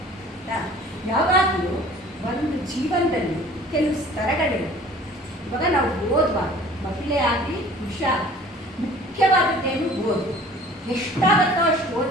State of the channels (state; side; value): normal; both; correlation 0.49